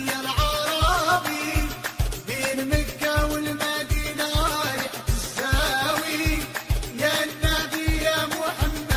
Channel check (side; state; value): both; identical; correlation 1.00